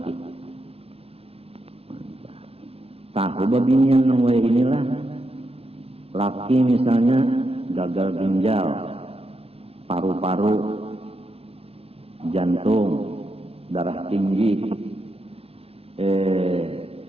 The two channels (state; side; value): late; left; 0.29 ms